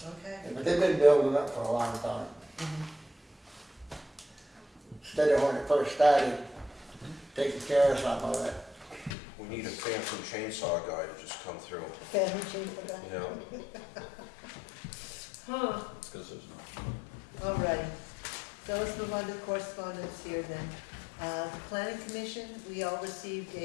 okay. But they've been building up for a long time. Instead of when it first started, taking care of some of it. We need a phantom chainsaw guy to just come through, Family change for that? you know? Huh, It's 'cause there's no. alrighty. So let's move on to correspondence here then. The planning commission, we all received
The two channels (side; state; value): right; drops out; at 9.2 s